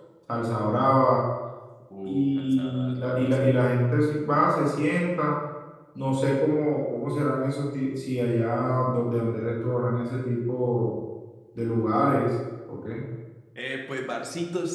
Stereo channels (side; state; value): both; identical; correlation 1.00